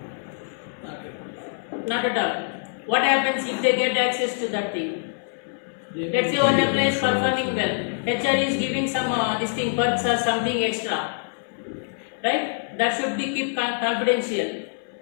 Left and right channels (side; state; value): right; silent; 60 dB below the other